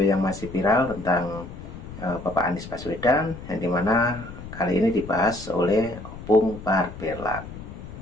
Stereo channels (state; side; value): noise; left; rumble, 13 dB below the sound